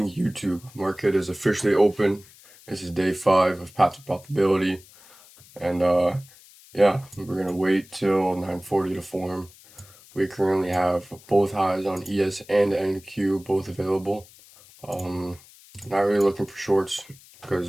YouTube. Market is officially open. This is day 5 of Path to Profitability. And yeah, we're gonna wait till 9:40 to form. We currently have both highs on ES and NQ both available. Not really looking for shorts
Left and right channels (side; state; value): left; noise; hiss, 24 dB below the sound